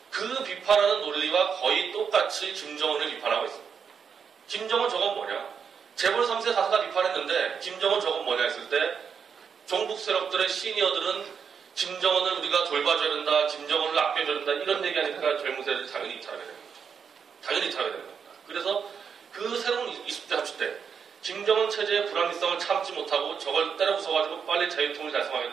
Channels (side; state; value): left; quieter; 6.7 dB